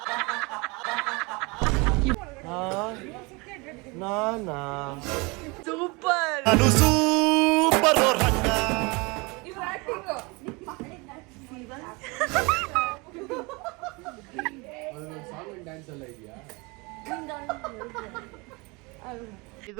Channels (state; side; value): quieter; left; 27.2 dB